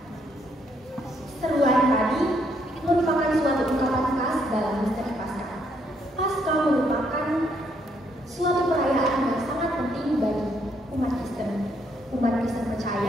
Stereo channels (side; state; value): both; normal; correlation 0.72